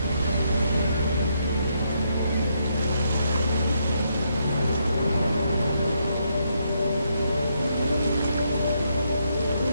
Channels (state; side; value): inverted; both; correlation -0.77